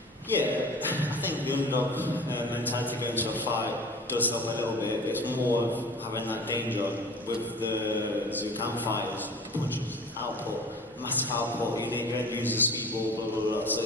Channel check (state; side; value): normal; both; correlation 0.41